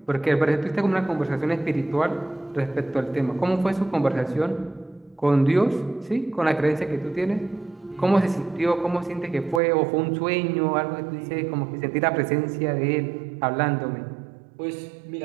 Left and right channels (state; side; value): drops out; left; at 9.6 s